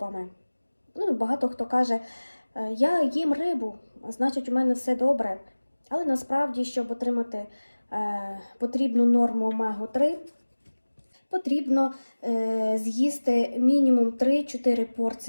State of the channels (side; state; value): both; inverted; correlation -1.00